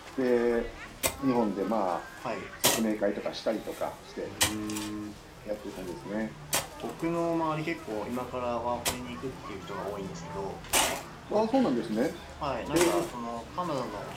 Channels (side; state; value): both; identical; correlation 1.00